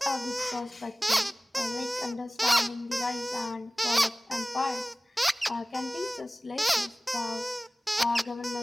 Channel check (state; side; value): normal; both; correlation 0.98